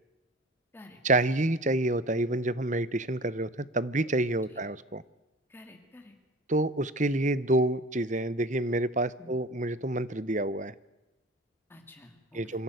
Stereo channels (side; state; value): both; normal; correlation 0.41